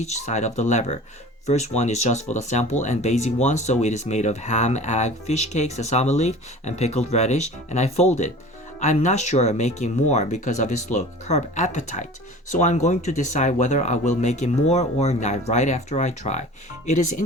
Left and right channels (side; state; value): both; normal; correlation 0.41